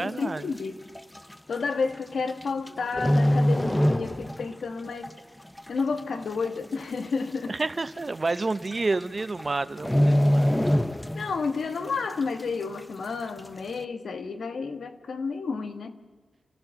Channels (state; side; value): normal; both; correlation 0.95